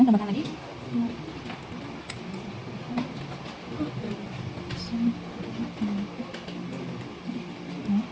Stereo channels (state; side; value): identical; both; correlation 1.00